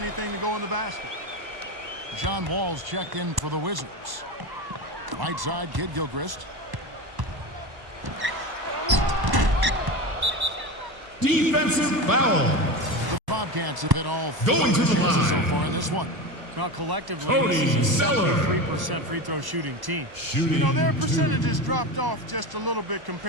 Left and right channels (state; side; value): late; left; 1.0 ms